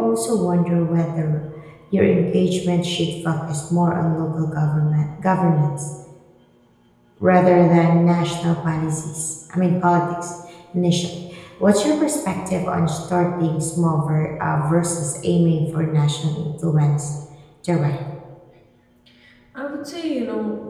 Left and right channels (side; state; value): both; identical; correlation 1.00